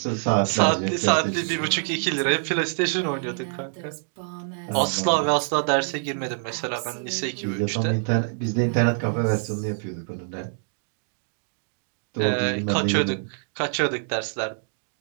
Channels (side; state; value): left; silent; digital silence